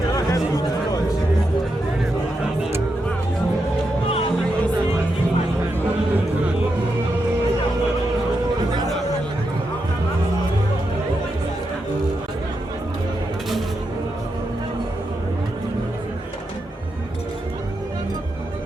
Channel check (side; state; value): both; normal; correlation 0.85